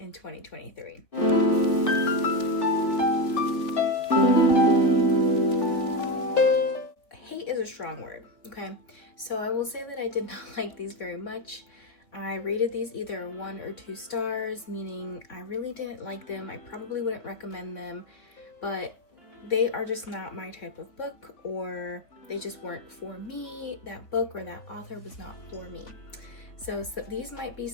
2023. Hate is a strong word, okay? So I will say that I did not like these very much. I rated these either 1 or 2 stars, meaning I really didn't like them. I probably wouldn't recommend them, but they are just not my type of book, or they just weren't for me. That book or that author was not for me. So these might be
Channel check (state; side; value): late; right; 3.3 ms